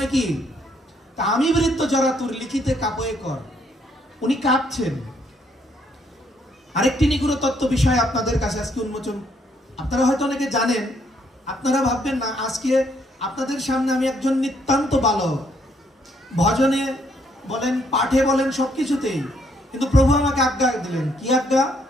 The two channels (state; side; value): normal; both; correlation 0.70